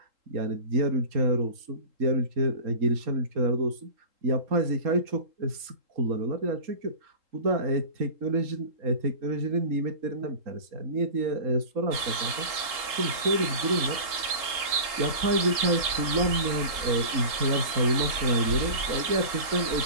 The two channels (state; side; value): late; left; 3.8 ms